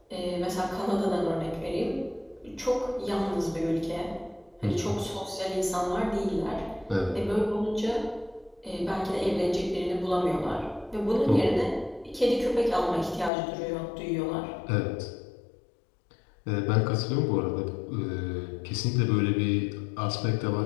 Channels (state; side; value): drops out; right; at 13.3 s